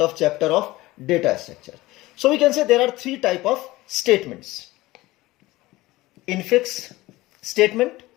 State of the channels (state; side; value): quieter; right; 18.9 dB